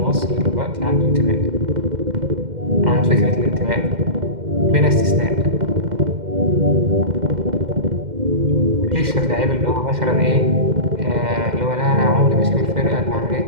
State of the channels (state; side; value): late; left; 2.1 ms